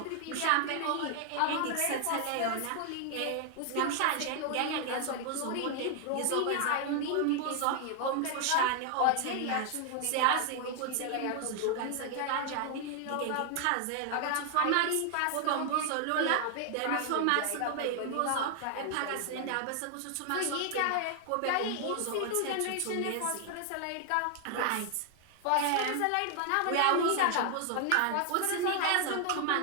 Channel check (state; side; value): different; both; correlation 0.00